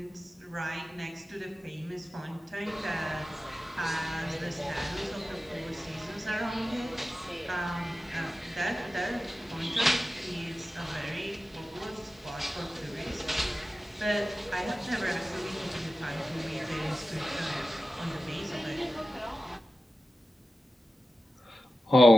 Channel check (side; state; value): both; normal; correlation 0.93